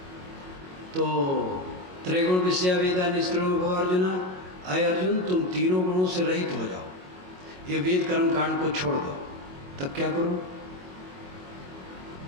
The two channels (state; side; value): late; left; 22 ms